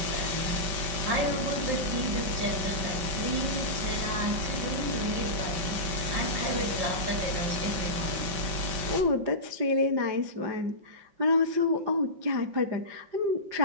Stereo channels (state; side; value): late; left; 5.2 ms